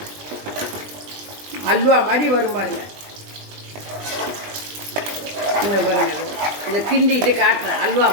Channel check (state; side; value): late; left; 20 ms